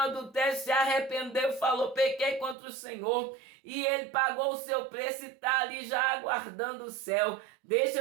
se arrependeu, falou, pequei contra o Senhor, e ele pagou o seu preço e está ali já aguardando o céu. Deixa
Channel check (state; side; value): drops out; left; at 2.6 s